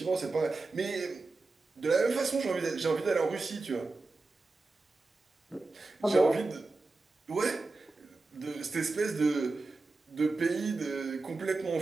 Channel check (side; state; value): left; quieter; 3.5 dB